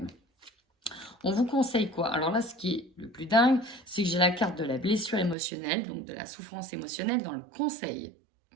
On vous conseille quoi? Alors là, ce qui est le plus dingue, c'est que j'ai la carte de la blessure émotionnelle, donc de la souffrance émotionnelle dans le conseil.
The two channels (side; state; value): left; drops out; at 5.4 s